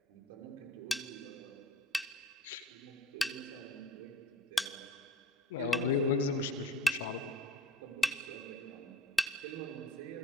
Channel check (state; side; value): normal; both; correlation 0.46